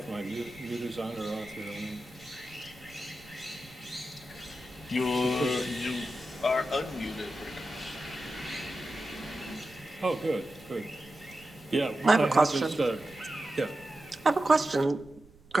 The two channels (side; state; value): right; noise; rumble, 24 dB below the sound